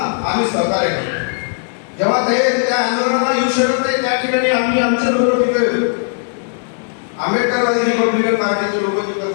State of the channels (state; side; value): silent; right; digital silence